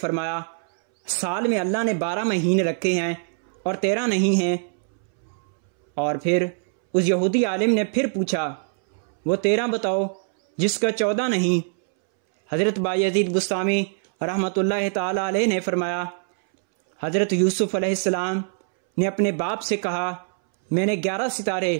साल में अल्लाह ने 12 महीने रखे हैं और 13 नहीं हैं। और फिर उस यहूदी आलिम ने फिर पूछा, वो 13 बताओ जिसका 14 नहीं। हज़रत बायज़ीद बुस्तामी रहमतुल्लाहि ताला अलैह ने फरमाया, हज़रत यूसुफ अलैहिस्सलाम ने अपने बाप से कहा, मैंने 11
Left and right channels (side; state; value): left; silent; 63 dB below the other